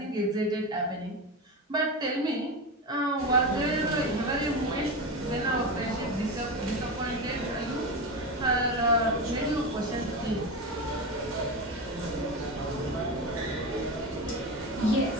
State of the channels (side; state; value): both; normal; correlation 0.20